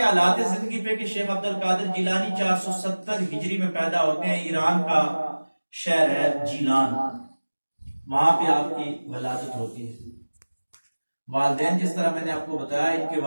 حالات زندگی پہ کہ شیخ عبد القادر جیلانی 470 ہجری میں پیدا ہوتے ہیں. ایران کا شہر ہے جیلان، وہاں پہ آپ کی ولادت ہوتی ہے. والدین جس طرح میں نے آپ کو بتایا، ان کے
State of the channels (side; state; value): both; inverted; correlation -1.00